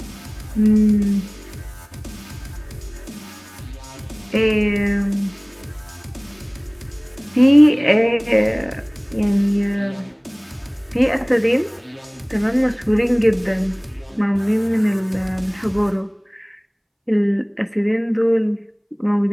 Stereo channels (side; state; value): both; identical; correlation 1.00